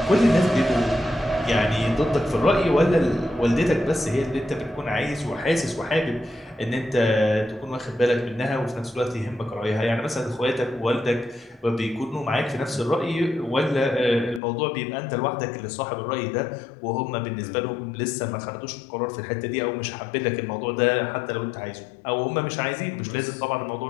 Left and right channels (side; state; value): right; drops out; at 14.4 s